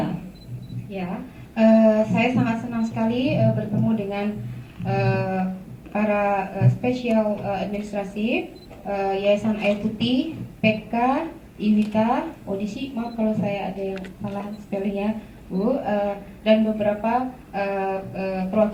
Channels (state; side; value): identical; both; correlation 1.00